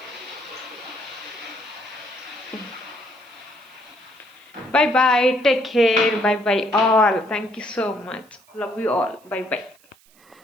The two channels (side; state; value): right; noise; hiss, 29 dB below the sound